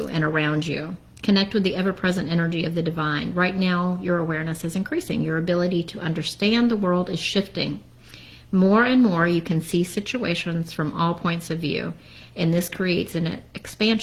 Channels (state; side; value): identical; both; correlation 1.00